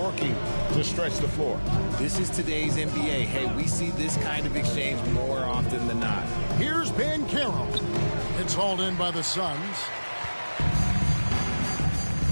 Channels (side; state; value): both; inverted; correlation -1.00